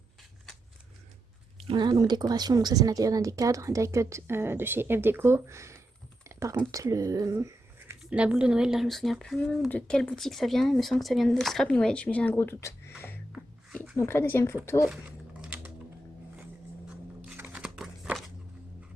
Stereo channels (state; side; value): normal; both; correlation 0.86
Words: Voilà, donc décoration, donc ça c'est l'intérieur d'un des cadres, un die cut de chez F Deco. Par contre, la boule de Noël, là je me souviens plus de quelle boutique ça vient, il me semble que ça vient de Scrap New Edge, mais j'ai un gros doute. Et donc la deuxième photo.